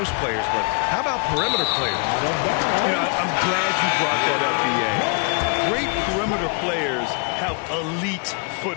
players, but how about perimeter players? You know, I'm glad you brought that up, B.A. Great perimeter players have elite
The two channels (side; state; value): right; quieter; 38.5 dB